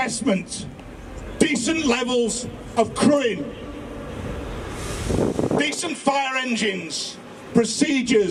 decent levels of crewing, decent fire engines,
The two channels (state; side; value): identical; both; correlation 1.00